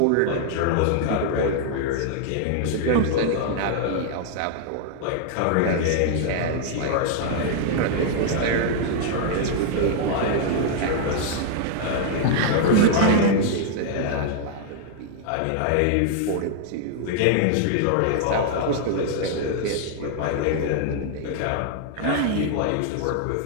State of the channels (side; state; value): both; different; correlation 0.00